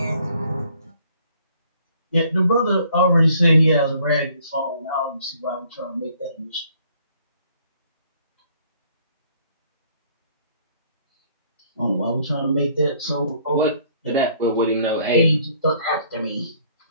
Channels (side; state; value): both; inverted; correlation -0.61